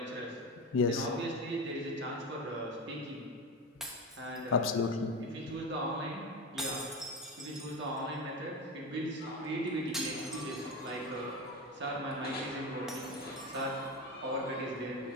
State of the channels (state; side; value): normal; both; correlation 0.22